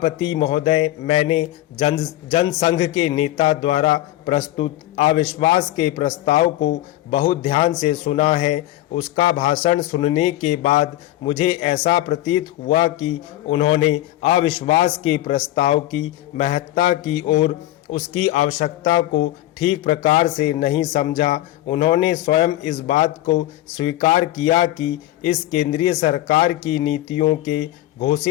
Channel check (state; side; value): quieter; right; 15.0 dB